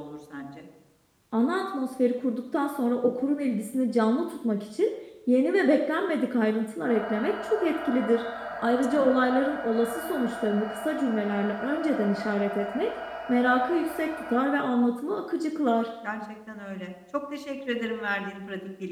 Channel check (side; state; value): both; identical; correlation 1.00